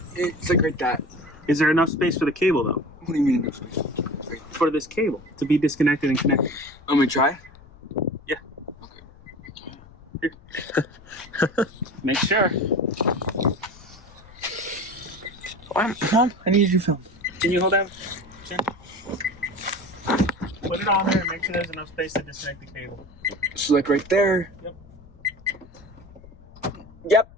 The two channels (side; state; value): left; noise; rumble, 22 dB below the sound